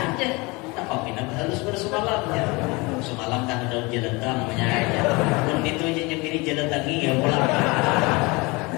Tak pindah harus bersemalamnya. Semalam kan ada jalan tang namanya aja. Pun itu aja nyembini jalan tangi ya pulang.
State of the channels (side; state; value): right; quieter; 25.7 dB